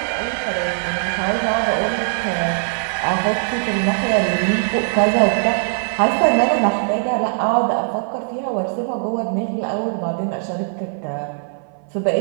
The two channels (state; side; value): silent; left; 57 dB below the other